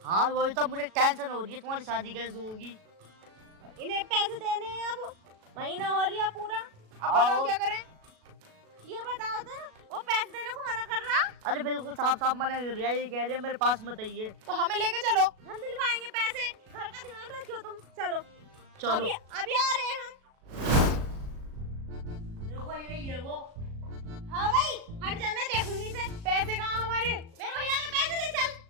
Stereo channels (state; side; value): late; left; 37 ms